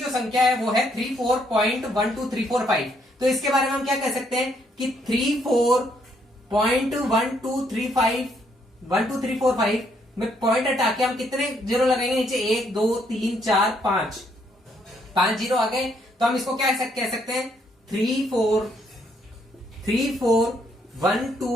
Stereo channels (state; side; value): normal; both; correlation 0.71